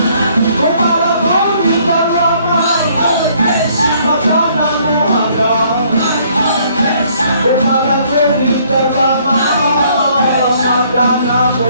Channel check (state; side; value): inverted; both; correlation -0.64